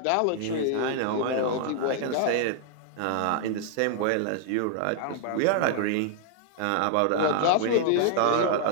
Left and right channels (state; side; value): different; both; correlation -0.01